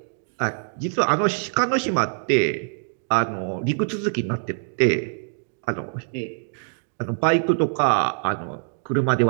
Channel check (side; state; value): left; silent; digital silence